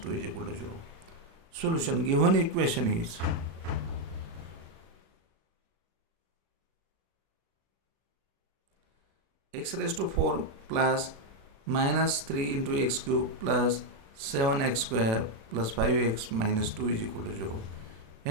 is equal to 0. Solution. Given equation is x raised to 4 plus minus 3 into x cube plus 7x square plus 5x minus 2 is equal to 0.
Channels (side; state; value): left; late; 36 ms